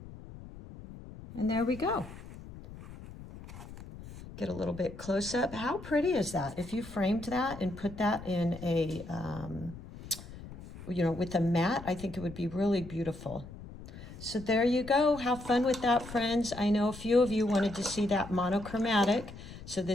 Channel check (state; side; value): noise; left; rumble, 14 dB below the sound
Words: And there we go. Get a little bit close up. How pretty is that? If you framed that and put that in a, with a mat, I think it would be really beautiful. So there you go. Have fun with that, friends. I know a few of you wanted to see that monochromatic. So